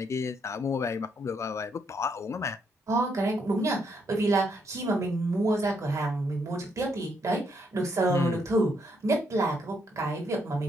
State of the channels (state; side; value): normal; both; correlation 0.74